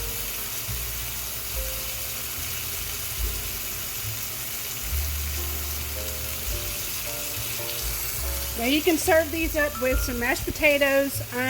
Now you can serve these up with some mashed potatoes.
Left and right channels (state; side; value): identical; both; correlation 1.00